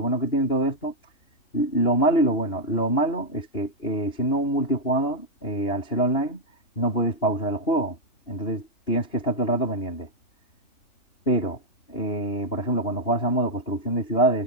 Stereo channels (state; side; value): late; right; 2.9 ms